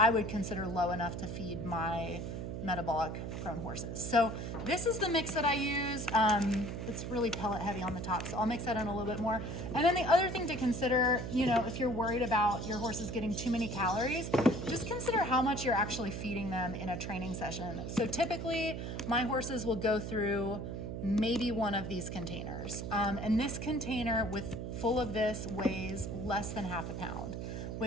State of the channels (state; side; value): noise; right; hum, 5 dB below the sound